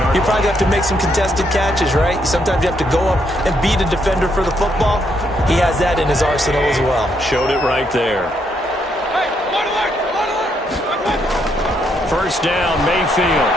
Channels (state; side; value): normal; both; correlation 0.75